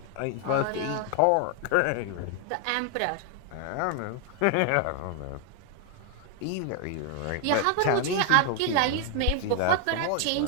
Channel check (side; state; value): both; different; correlation 0.00